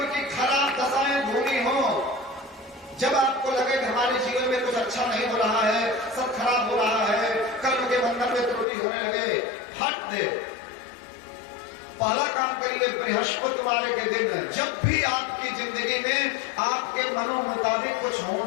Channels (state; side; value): drops out; right; at 8.7 s